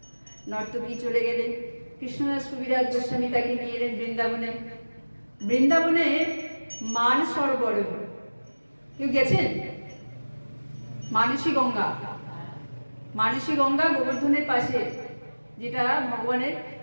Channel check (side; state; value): both; inverted; correlation -1.00